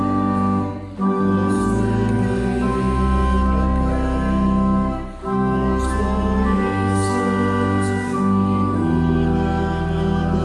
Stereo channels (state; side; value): identical; both; correlation 1.00